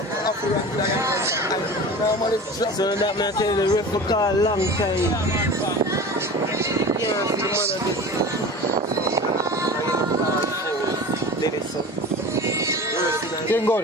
So that man tell the ref for call long time. Yeah, the man Game goal.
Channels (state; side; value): normal; both; correlation 0.35